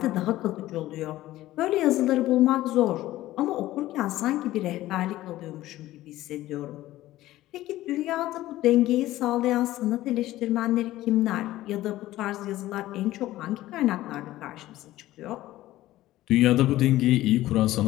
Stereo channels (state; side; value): quieter; right; 15.6 dB